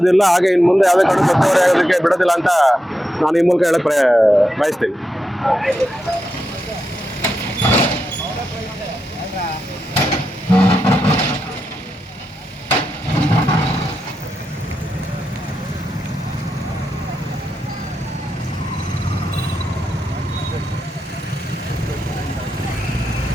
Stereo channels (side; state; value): both; normal; correlation 0.86